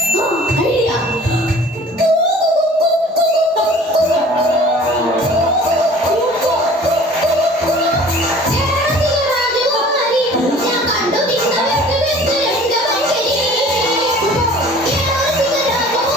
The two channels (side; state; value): both; normal; correlation 0.47